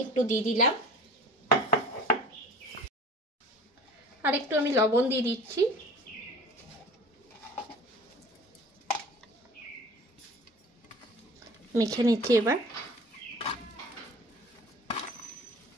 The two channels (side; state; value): both; normal; correlation 0.43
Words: একটু দিয়ে দিলাম। আর একটু আমি লবণ দিয়ে দিচ্ছি। মেখে নিচ্ছি এবার।